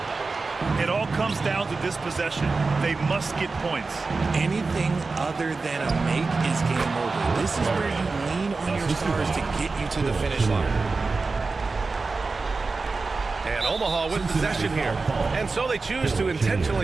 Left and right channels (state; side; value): quieter; left; 4.0 dB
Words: It all comes down to this possession. They must get points. Anything other than a make is game over. This is where you lean on your stars to get you to the finish line. And Omaha with possession here. And so they choose to